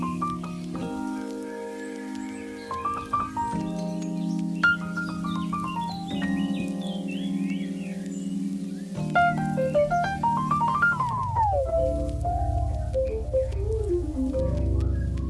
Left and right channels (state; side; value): identical; both; correlation 1.00